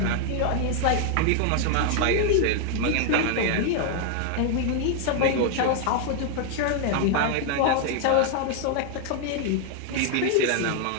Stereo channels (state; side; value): different; both; correlation 0.00